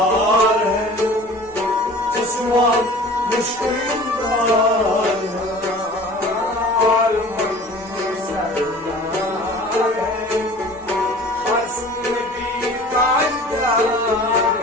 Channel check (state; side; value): noise; left; rumble, 28 dB below the sound